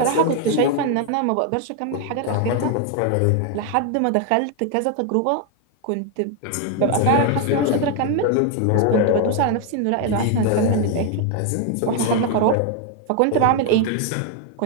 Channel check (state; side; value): different; both; correlation 0.01